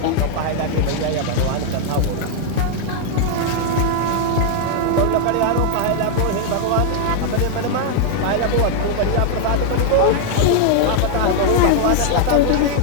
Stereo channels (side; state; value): both; different; correlation 0.00